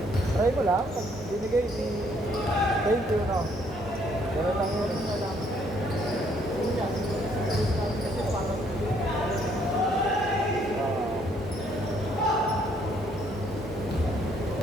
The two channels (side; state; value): both; normal; correlation 0.67